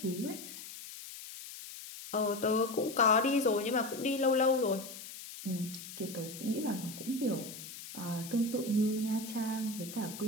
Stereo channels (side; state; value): left; noise; hiss, 12 dB below the sound